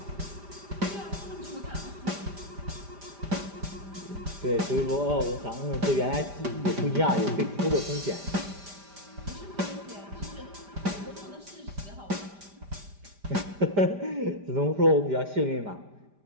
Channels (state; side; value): late; left; 5.0 ms